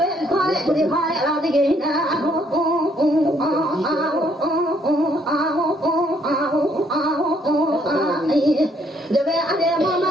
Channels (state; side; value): normal; both; correlation 0.68